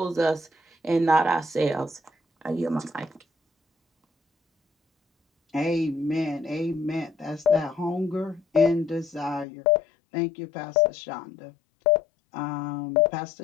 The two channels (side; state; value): right; drops out; at 9.5 s